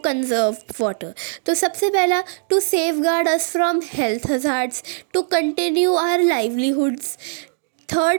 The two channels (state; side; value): silent; left; digital silence